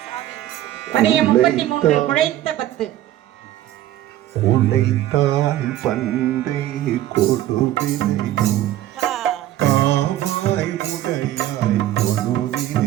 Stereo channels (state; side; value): quieter; left; 13.5 dB